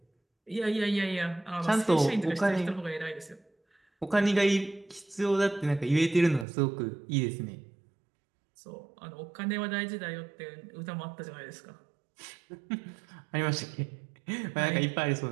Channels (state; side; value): drops out; left; at 6.5 s